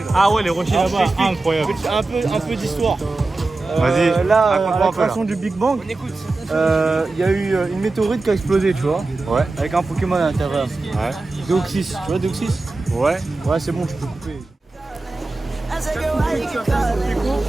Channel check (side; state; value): left; quieter; 3.3 dB